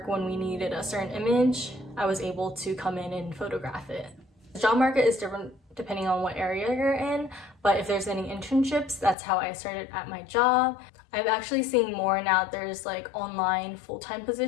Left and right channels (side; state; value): right; drops out; at 9.2 s